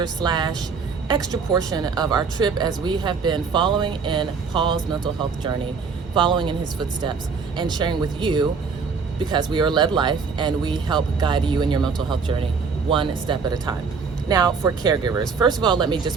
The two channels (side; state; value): left; quieter; 5.3 dB